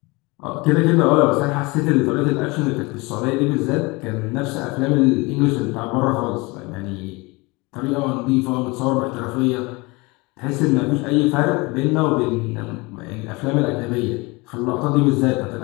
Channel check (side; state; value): right; quieter; 25.2 dB